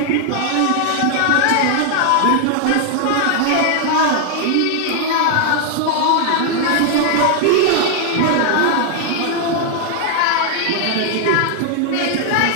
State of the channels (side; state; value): both; different; correlation 0.00